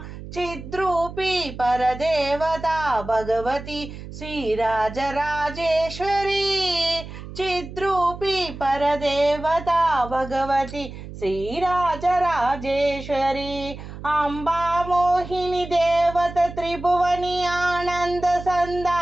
చిద్రూపీ పరదేవతా భగవతి శ్రీరాజరాజేశ్వరి చిద్రూపీ పరదేవతా భగవతి శ్రీరాజరాజేశ్వరి అంబా మోహిని దేవత త్రిభువని ఆనంద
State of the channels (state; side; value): noise; right; hum, 12 dB below the sound